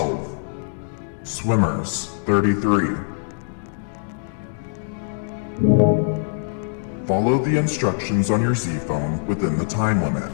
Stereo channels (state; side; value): silent; right; digital silence